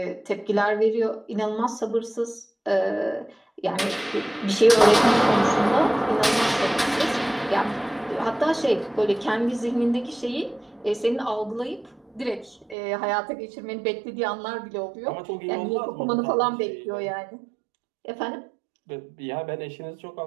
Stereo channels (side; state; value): left; drops out; at 12.8 s